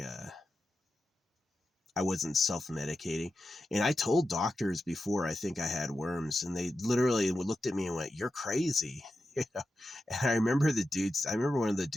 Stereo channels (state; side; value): normal; both; correlation 0.90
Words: I wasn't self-medicating. And I told doctors before I think I had worms, and they literally looked at me and went, "You're crazy." And I remember one of the